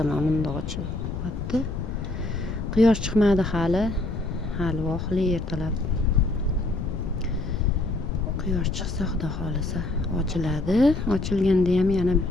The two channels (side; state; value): left; noise; rumble, 5 dB below the sound